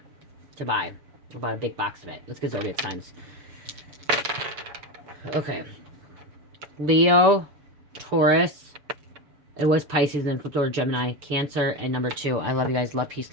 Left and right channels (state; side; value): late; left; 7.0 ms